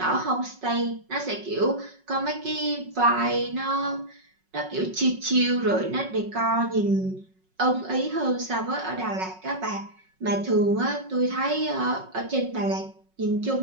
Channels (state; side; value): late; left; 5.4 ms